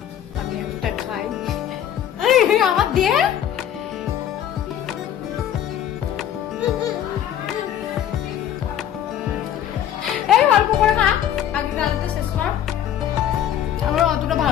আমি একটা খাই। আমার দিয়ে এই অল্প করে খা, আগে ডালতে শেষ কর। আমার অতটা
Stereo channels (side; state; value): right; quieter; 10.5 dB